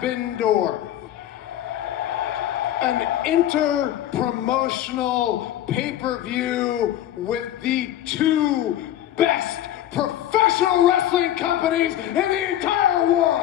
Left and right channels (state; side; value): quieter; right; 12.3 dB